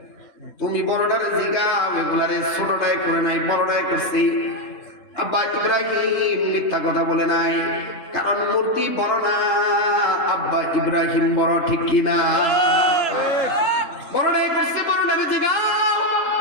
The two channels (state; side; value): late; right; 3.7 ms